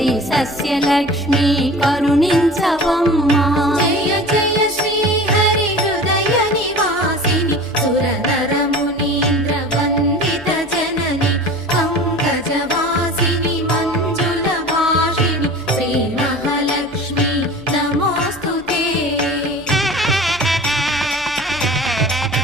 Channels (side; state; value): right; noise; hum, 26 dB below the sound